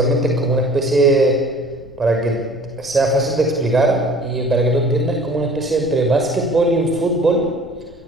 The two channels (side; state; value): left; noise; rumble, 23 dB below the sound